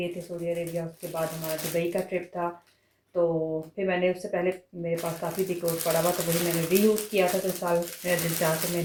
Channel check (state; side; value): identical; both; correlation 1.00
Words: थे सऊदी अरेबिया, उसके बाद हमारा दुबई का ट्रिप था। तो फिर मैंने उससे पहले मेरे पास काफ़ी डिकोर पड़ा हुआ, तो वही मैंने रीयूज़ किया था। तो इस साल मेरा दिल चाह के मैं